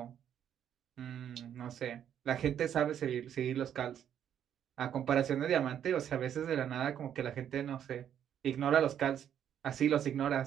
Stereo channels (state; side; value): quieter; left; 9.6 dB